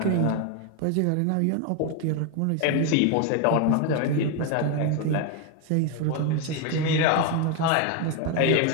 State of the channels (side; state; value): both; different; correlation 0.01